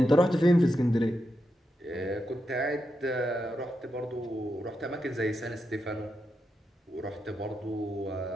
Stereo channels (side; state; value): both; normal; correlation 0.86